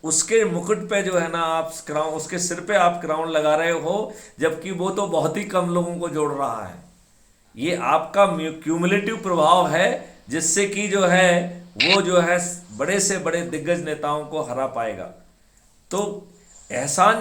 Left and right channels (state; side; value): identical; both; correlation 1.00